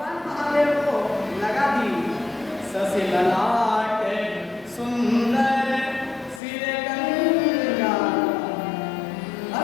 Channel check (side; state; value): right; drops out; at 6.4 s